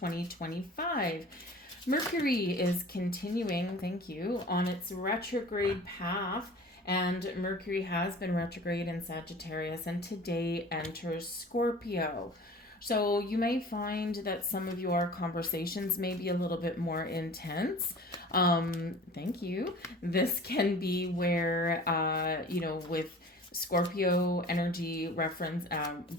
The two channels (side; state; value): both; normal; correlation 0.43